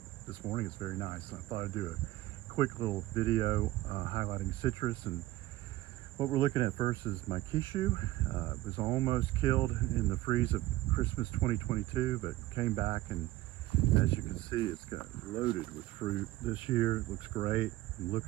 this morning it's very nice. I thought I'd do a quick little video highlighting citrus. And what we're looking at first is my Kishu. It was almost killed in the freeze of Christmas 2022, but came back, and as you can see, it's got loaded with fruit this year. It looks great. I'm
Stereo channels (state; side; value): quieter; left; 16.7 dB